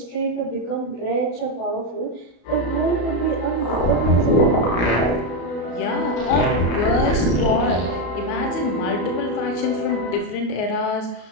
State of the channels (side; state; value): right; late; 34 ms